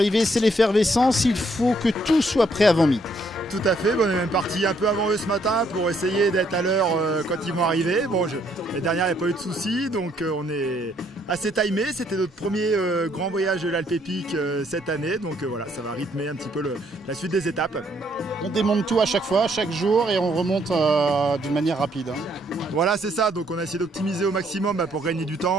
c'est l'effervescence. Il faut que tout soit prêt avant midi. Tout à fait, on est même parti un peu avant eux ce matin pour essayer d'être à l'heure quand ils vont arriver. Bon, les dernières, il n'y a pas eu de soucis, donc on est assez timé. C'était notre premier grand voyage de l'Alpépique cette année, donc voilà, ça va rythmer un petit peu la suite des étapes. On démonte tout à chaque fois, chaque jour, et on remonte d'une manière rapide. Voilà, c'est ça, donc on a essayé d'optimiser au maximum pour gagner du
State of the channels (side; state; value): both; normal; correlation 0.69